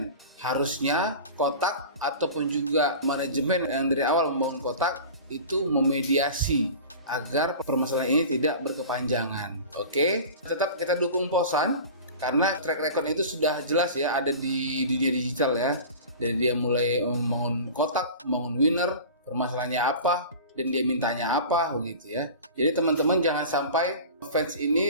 Harusnya kotak ataupun juga manajemen yang dari awal membangun kotak itu memediasi agar permasalahan ini tidak berkepanjangan. Oke, tetap kita dukung Posan karena track record itu sudah jelas ya, ada di dunia digital ya. Dari dia mulai membangun kotak, membangun winner, permasalahannya apa, dan dia mintanya apa begitu ya. Jadi teman-teman jangan sampai fans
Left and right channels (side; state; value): both; inverted; correlation -0.36